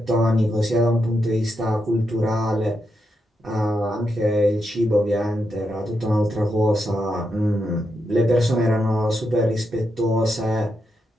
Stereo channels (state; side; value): normal; both; correlation 0.84